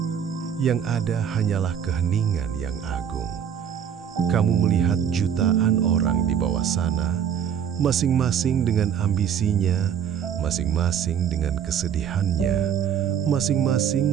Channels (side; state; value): left; quieter; 8.5 dB